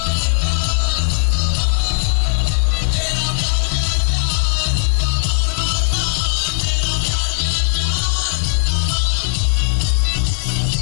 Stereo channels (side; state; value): right; silent; 68 dB below the other